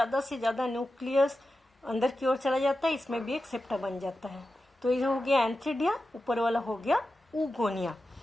से ज्यादा न्यूक्लियस अंदर की ओर चला जाता है, इसमें भी एक सेप्टा बन जाता है। तो ये हो गया एंथ्रीडिया, ऊपर वाला हो गया ऊगोनिया।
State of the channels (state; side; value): normal; both; correlation 0.92